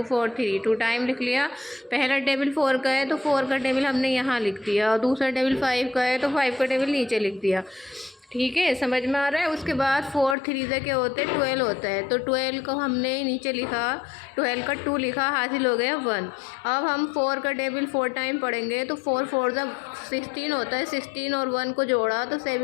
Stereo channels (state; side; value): drops out; right; at 10.4 s